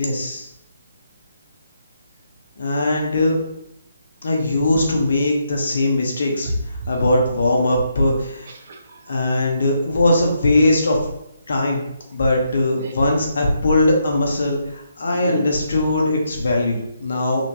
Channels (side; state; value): both; inverted; correlation -0.78